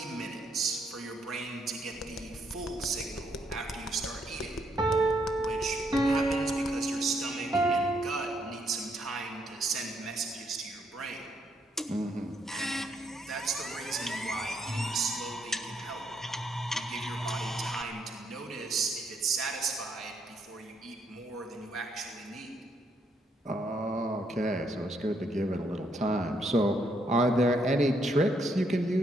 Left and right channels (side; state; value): both; normal; correlation 0.74